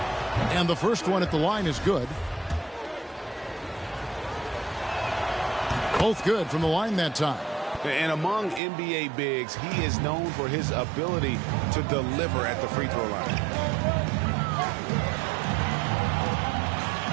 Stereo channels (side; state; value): left; drops out; at 8.6 s